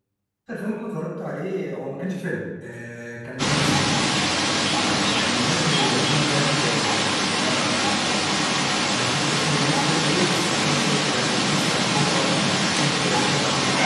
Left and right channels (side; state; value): both; identical; correlation 1.00